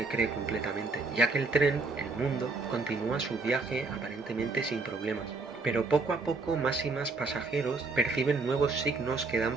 cree completamente, ya que el tren, el mundo, continúa su viaje aparentemente sin problemas. Pero poco a poco más y más pasajeros perciben nuevos signos que dan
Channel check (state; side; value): quieter; left; 3.8 dB